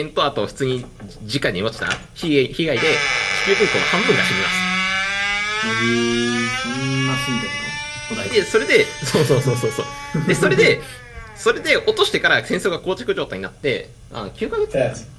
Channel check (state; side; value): identical; both; correlation 1.00